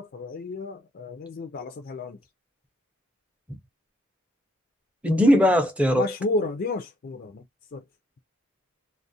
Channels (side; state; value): both; normal; correlation 0.71